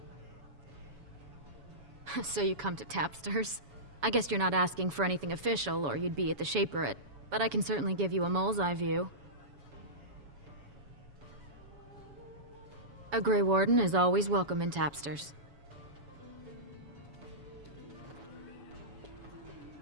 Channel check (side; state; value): left; late; 7.1 ms